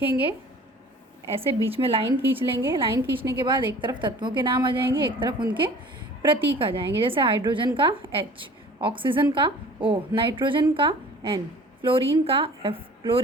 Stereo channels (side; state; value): both; normal; correlation 0.46